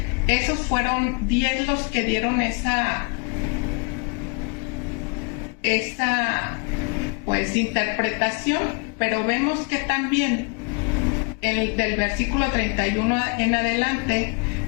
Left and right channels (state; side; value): quieter; right; 34.2 dB